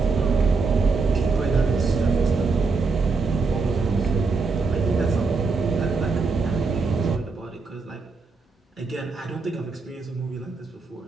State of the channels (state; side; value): quieter; left; 4.3 dB